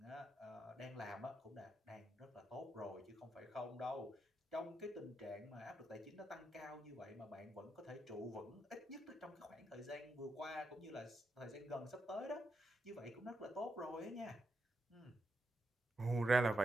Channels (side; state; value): both; normal; correlation 0.82